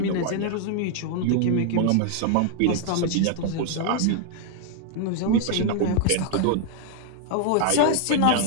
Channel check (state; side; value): different; both; correlation 0.00